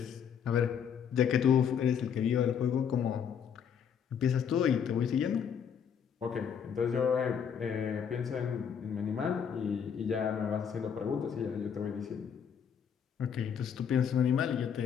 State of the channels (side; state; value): right; quieter; 7.7 dB